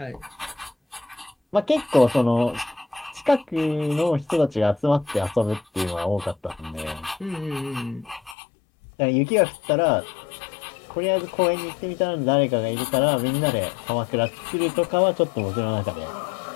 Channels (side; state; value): right; drops out; at 8.3 s